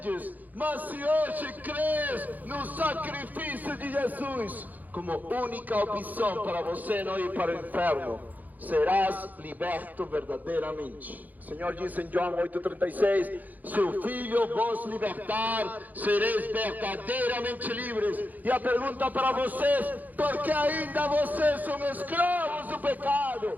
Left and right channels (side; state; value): left; late; 0.082 ms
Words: mas se hoje crês no sacrifício de Jesus como única opção para você não ir para o inferno, serás liberto verdadeiramente. O Senhor disse em João 8,36: se o Filho vos libertar, sereis verdadeiramente livres. E a pergunta para vocês: por que ainda vocês são escravos do